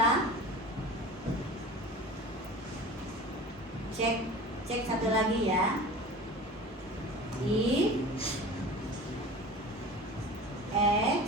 Cek satu lagi ya. If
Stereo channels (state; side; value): normal; both; correlation 0.37